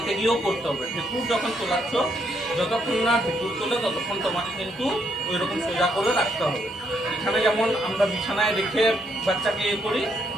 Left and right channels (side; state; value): both; normal; correlation 0.74